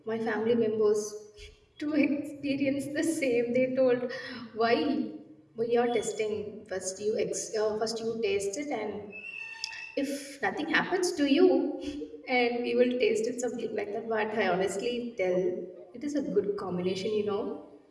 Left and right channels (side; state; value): both; identical; correlation 1.00